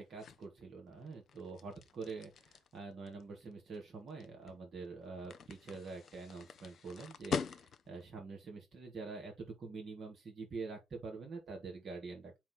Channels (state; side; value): normal; both; correlation 0.72